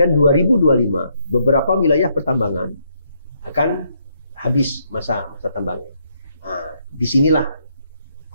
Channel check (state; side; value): inverted; both; correlation -0.74